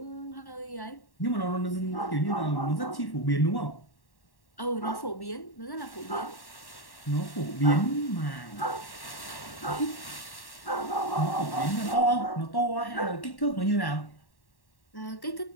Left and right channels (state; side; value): late; right; 1.1 ms